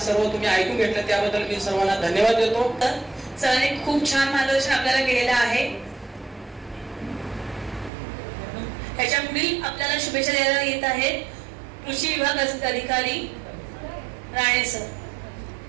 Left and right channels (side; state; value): left; drops out; at 7.9 s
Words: सर्व तुम्ही ऐकून घेतलं त्याबद्दल मी सर्वांना धन्यवाद देतो. सरांनी खूप छान मार्गदर्शन आपल्याला केलेलं आहे. पुढील आपल्याला शुभेच्छा द्यायला येत आहेत कृषी विभाग अधिकारी राणे सर.